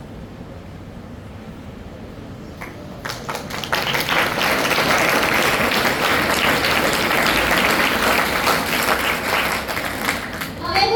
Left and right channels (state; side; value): identical; both; correlation 1.00